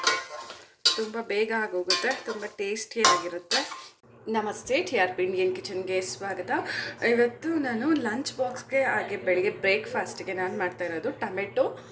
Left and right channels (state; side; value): identical; both; correlation 1.00